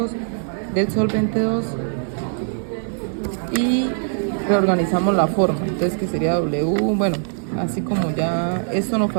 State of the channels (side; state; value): left; silent; digital silence